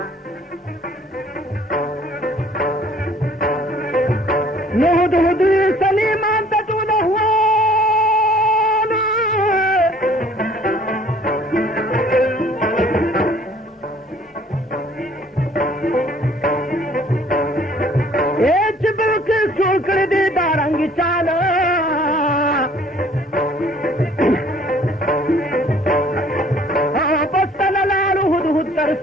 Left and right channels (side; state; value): both; normal; correlation 0.56